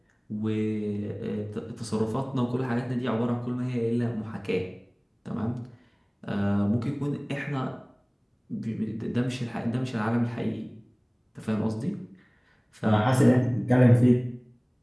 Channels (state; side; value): identical; both; correlation 1.00